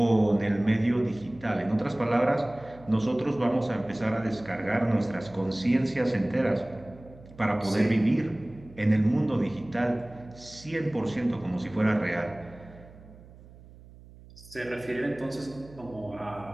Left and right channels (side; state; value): right; noise; hum, 21 dB below the sound